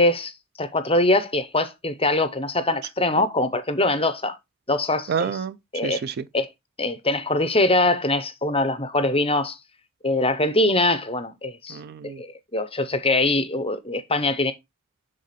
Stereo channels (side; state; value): both; normal; correlation 0.15